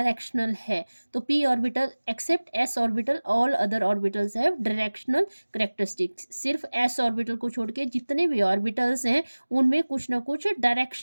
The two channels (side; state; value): both; inverted; correlation -1.00